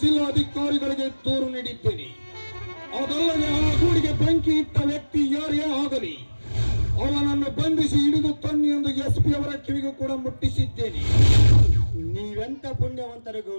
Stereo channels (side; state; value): both; inverted; correlation -1.00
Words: ಜಿಲ್ಲಾಧಿಕಾರಿಗಳಿಗೆ ದೂರು ನೀಡಿದ್ದೇನೆ. ಅದಲ್ಲದೆ ಆ ಗೂಡಿಗೆ ಬೆಂಕಿ ಇಟ್ಟ ವ್ಯಕ್ತಿ ಯಾರೇ ಆಗಲಿ ಅವನನ್ನು ಬಂಧಿಸಿ ಹಿಡಿದು ತನ್ನಿ ಎಂದು SP ಅವರ ಕಿವಿಗೂ ಕೂಡ ಮುಟ್ಟಿಸಿದ್ದೇನೆ. ನೀವೆಂತ ಪುಣ್ಯವಂತರು